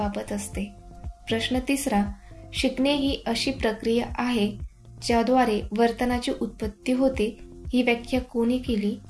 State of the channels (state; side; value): identical; both; correlation 1.00